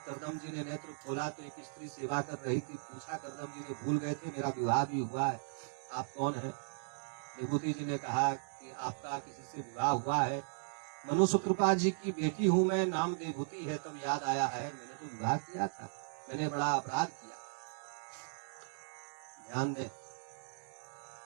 कर्दम जी ने नेत्र खोला तो एक स्त्री सेवा कर रही थी। पूछा, कर्दम जी ने भूल गए थे, मेरा विवाह भी हुआ है, आप कौन है? देवहूति जी ने कहा कि आपका किसी से विवाह हुआ है। मनुष्य कृपा जी की बेटी हूं मैं, नाम देवहूति है। तब याद आया है, मैंने तो विवाह किया था, मैंने बड़ा अपराध किया। ध्यान दें,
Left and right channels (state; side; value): silent; left; digital silence